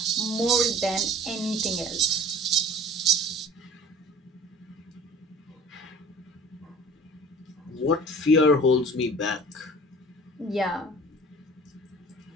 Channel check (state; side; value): normal; both; correlation 0.47